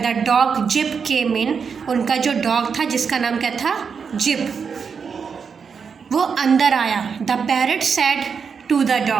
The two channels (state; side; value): quieter; left; 6.1 dB